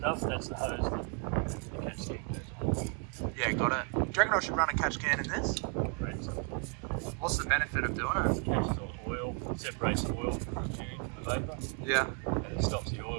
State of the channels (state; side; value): quieter; left; 39.6 dB